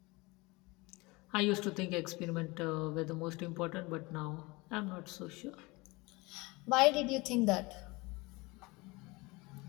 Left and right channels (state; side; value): quieter; right; 24.1 dB